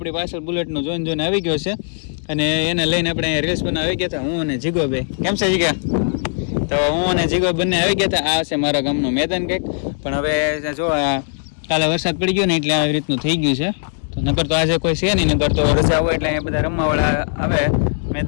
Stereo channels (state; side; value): silent; right; digital silence